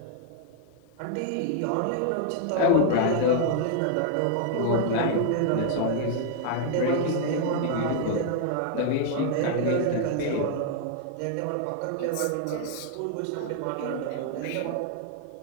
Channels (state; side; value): different; both; correlation 0.00